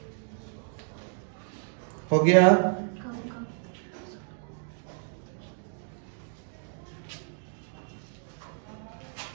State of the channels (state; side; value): silent; left; 57 dB below the other